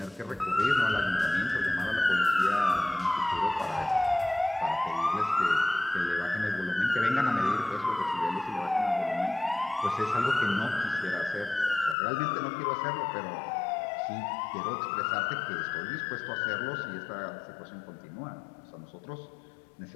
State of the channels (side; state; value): right; drops out; at 12.0 s